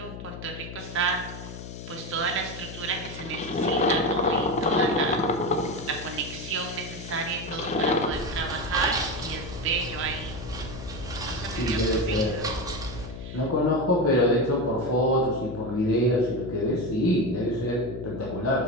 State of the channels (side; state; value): left; noise; hum, 10 dB below the sound